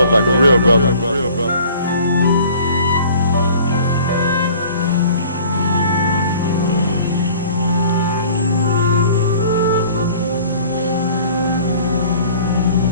like a real brother.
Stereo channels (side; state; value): both; inverted; correlation -0.50